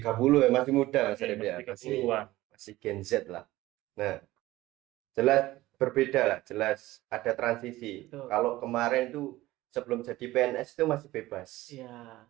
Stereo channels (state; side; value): quieter; left; 17.4 dB